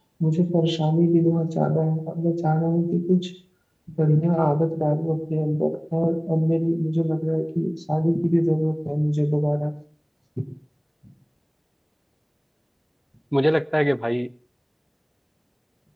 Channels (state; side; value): identical; both; correlation 1.00